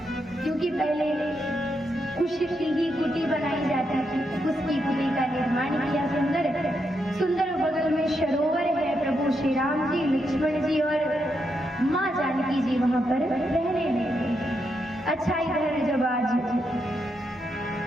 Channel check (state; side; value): normal; both; correlation 0.82